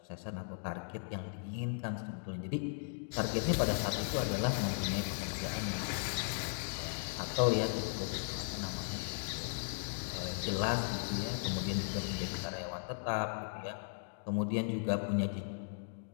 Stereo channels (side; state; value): right; silent; digital silence